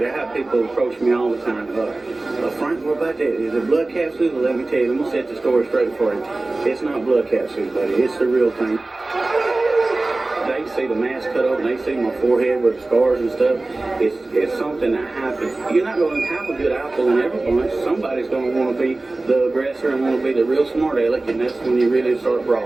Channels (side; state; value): left; quieter; 3.0 dB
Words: I have people approach me all the time. Frank, what about that? Is it blood capsules? Let me tell you, I'm going to set the story straight for you. It's not blood capsules, buddy. It's the real thing. They see the mask cut open, they see my forehead with scars and stuff. It's something that happens. You're not going to have a good apple in every bunch. Somebody's going to want to be the aggressor and want to be the real smart aleck, and that's when you really start